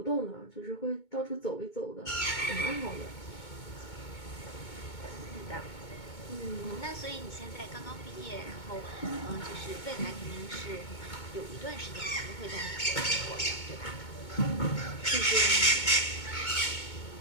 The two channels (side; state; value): right; late; 2.2 ms